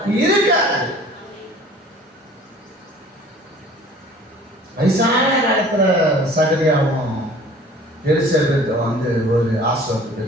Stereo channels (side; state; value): both; normal; correlation 0.48